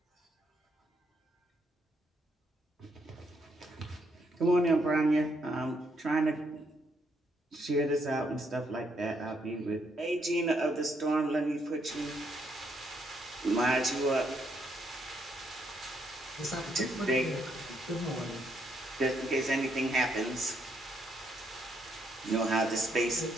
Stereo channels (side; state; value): both; normal; correlation 0.74